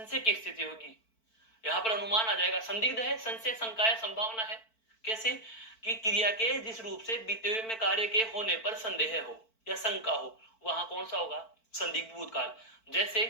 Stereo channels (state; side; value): late; right; 4.5 ms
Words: की स्थिति होगी। यहां पर अनुमान आ जाएगा, संदिग्ध है, संशय, शंका है, संभावना है। कैसे कि क्रिया के जिस रूप से बीते हुए में कार्य के होने पर संदेह हो या शंका हो, वहां कौन सा होगा, संदिग्ध भूतकाल। जैसे